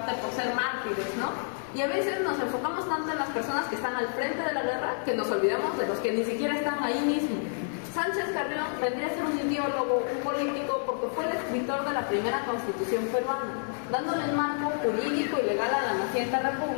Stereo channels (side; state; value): right; silent; 59 dB below the other